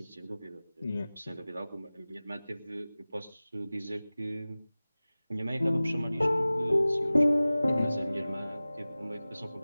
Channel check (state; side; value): inverted; both; correlation -0.98